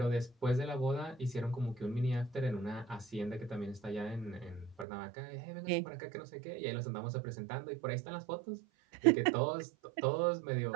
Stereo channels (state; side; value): drops out; left; at 4.9 s